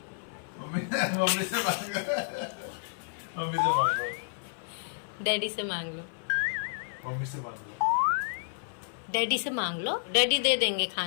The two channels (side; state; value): right; silent; 57 dB below the other